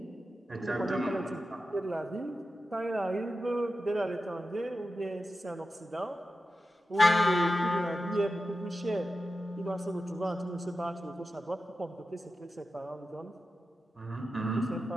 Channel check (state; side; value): normal; both; correlation 0.92